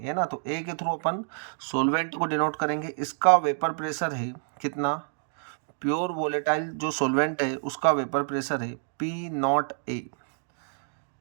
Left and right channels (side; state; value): left; silent; digital silence